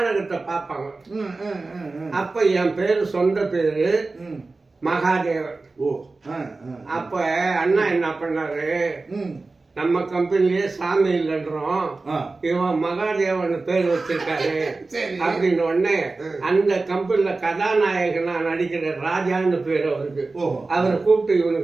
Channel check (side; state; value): left; quieter; 3.6 dB